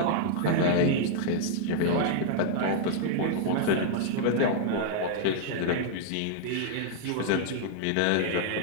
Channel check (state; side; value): different; both; correlation -0.01